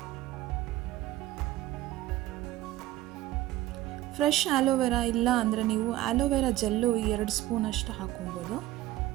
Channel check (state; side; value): quieter; left; 15.2 dB